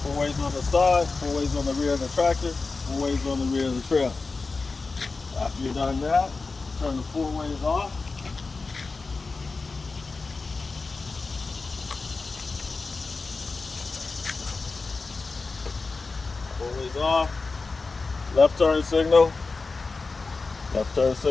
4-ways on the side, 4-ways on the rear of the tractor, 4-ways on the rear of the trailer. After you've done that, turn the 4-ways off. is off. Left turn signal. Left turn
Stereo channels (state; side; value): quieter; right; 4.0 dB